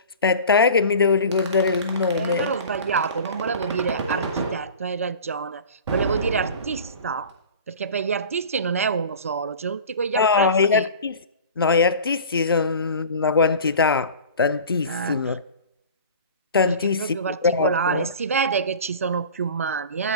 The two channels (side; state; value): both; inverted; correlation -0.38